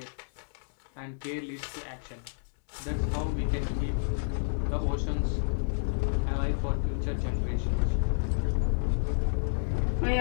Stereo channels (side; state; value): right; silent; digital silence